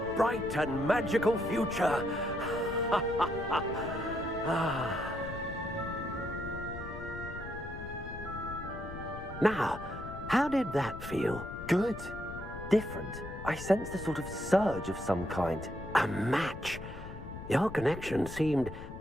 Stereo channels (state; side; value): noise; left; rumble, 11 dB below the sound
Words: bright and magical future. Now, how did that feel? Good. Different. I sensed a sort of surge of some kind. A match. Your connection seemed